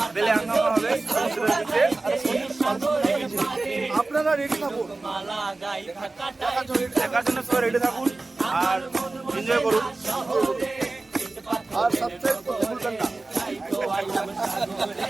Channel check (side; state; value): left; quieter; 3.3 dB